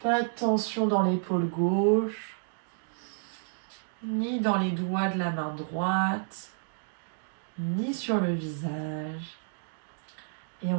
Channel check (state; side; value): silent; left; digital silence